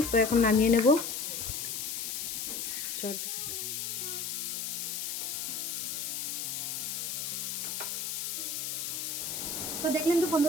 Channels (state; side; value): noise; left; hiss, 3 dB below the sound